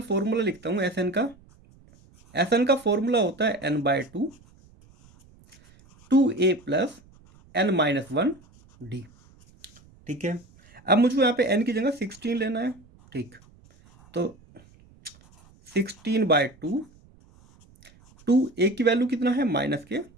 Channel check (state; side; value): noise; right; rumble, 27 dB below the sound